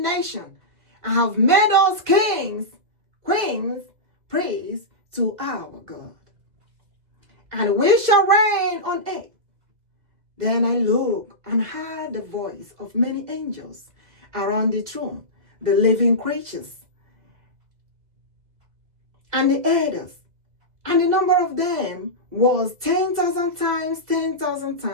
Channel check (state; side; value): late; left; 2.0 ms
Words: nation, and have made us kings, queens, priests to our God. And we shall reign on earth. Then I looked and heard the voice of many angels around the throne, the living creatures, and the elders. And the number of them was 10,000 times 10,000